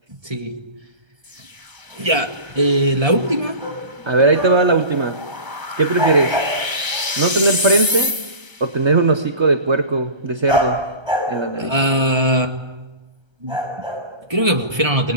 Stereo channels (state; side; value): late; left; 1.3 ms